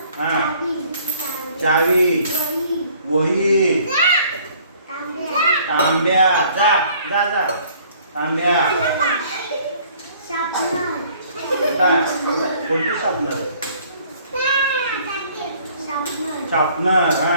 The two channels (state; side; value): inverted; both; correlation -0.57